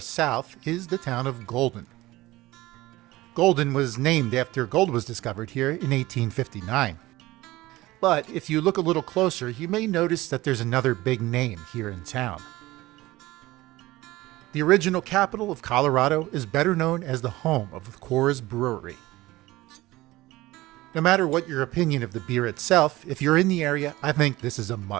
is the town of Golden. Golden was named after gold was discovered here in 1859. But if you look a little closer, you may notice that there's another big name here in town. The original capital of Colorado is better known as the home of the Coors Brewery. No matter what your opinion of the beer itself, if you're in the area, I think this is a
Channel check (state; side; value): quieter; left; 18.4 dB